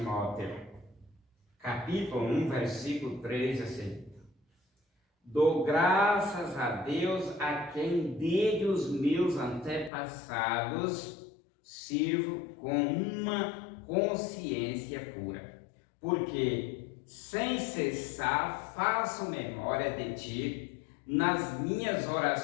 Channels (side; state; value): right; drops out; at 9.9 s